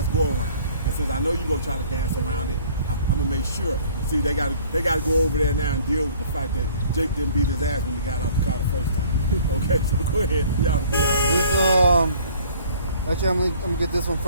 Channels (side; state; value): both; inverted; correlation -0.53